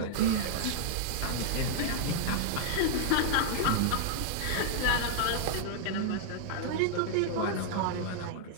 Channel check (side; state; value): both; different; correlation -0.01